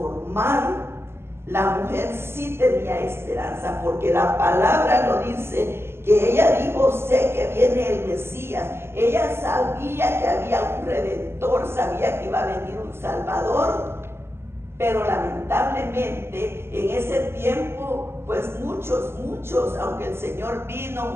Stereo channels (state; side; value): late; left; 0.12 ms